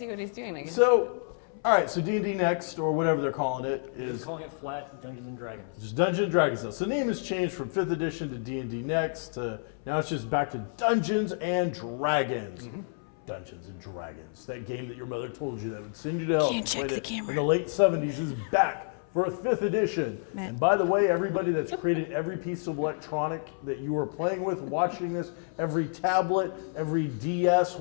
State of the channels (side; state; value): right; silent; 58 dB below the other